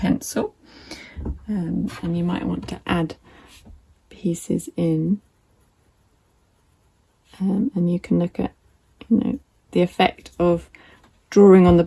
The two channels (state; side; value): identical; both; correlation 1.00